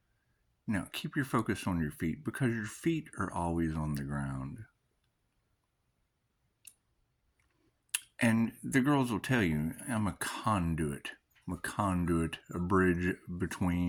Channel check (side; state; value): both; identical; correlation 1.00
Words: Now, keep your focus on your feet because your feet are always on the ground. And the girls will tell you, I'm a conduit. I'm a conduit, a bridge